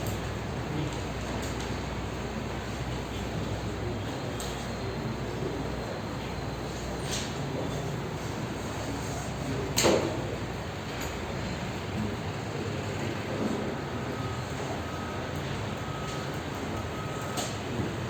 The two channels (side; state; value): both; identical; correlation 1.00